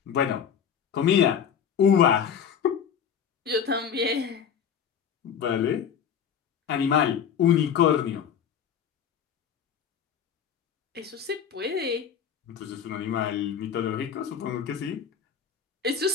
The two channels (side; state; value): right; quieter; 7.7 dB